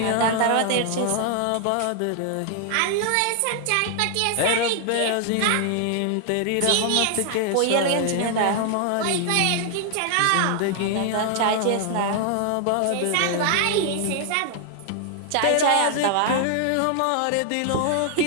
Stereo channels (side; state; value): both; different; correlation 0.00